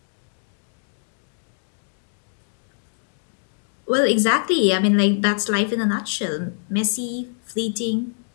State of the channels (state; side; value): silent; right; digital silence